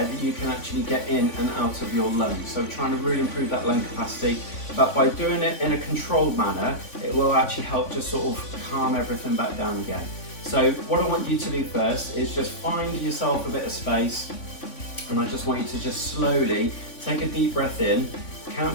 that you can actually get in and out of your lungs. So we're trying to really improve that lung capacity, but by doing it in a controlled manner, it will actually help just sort of calm everything back down again. So what I want you to do first is just find yourself a bit of space, and I just want you to just slowly take a deep breath in,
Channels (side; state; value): right; late; 3.5 ms